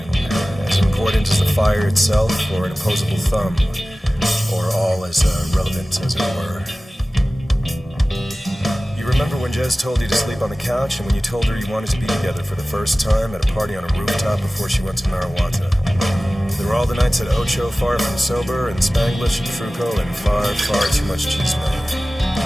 as important as the fire itself or an opposable thumb, or all as irrelevant as it were. Remember when Jez told you to sleep on the couch and when you told her you wanted to be together for the first time at a party on a rooftop before she went to Narawata? There were all the nights at Ocho, far from sober, and Spanglish and Truco, and far, far too much chisme.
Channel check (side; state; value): both; normal; correlation 0.97